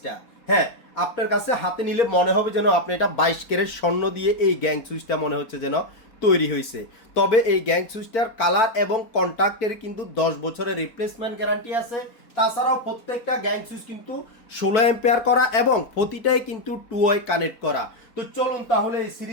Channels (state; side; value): late; right; 4.1 ms